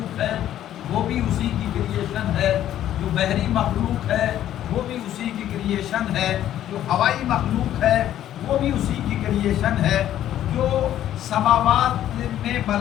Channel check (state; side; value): quieter; right; 11.8 dB